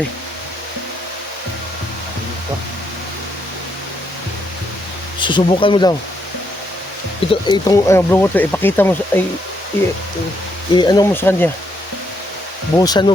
Susubukan mo daw. Itong blue water, ipakita mo sa ano mo sa kanya. Buhusan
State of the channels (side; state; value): both; normal; correlation 0.76